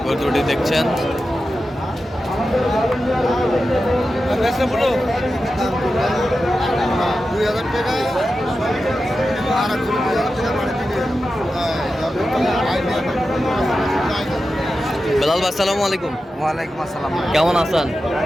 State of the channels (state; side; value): normal; both; correlation 0.92